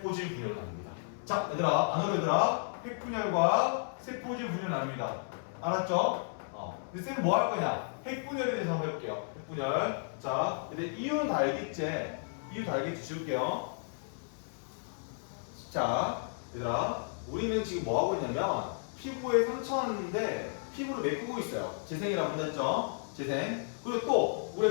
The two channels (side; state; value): right; silent; 56 dB below the other